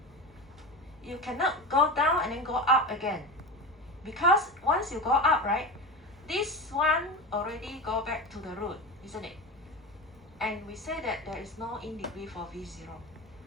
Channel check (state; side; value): normal; both; correlation 0.25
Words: You cannot go down and then go up again. Because once you go up, right, this one already go back to the root, isn't it? And we say that there is no in degree for V0.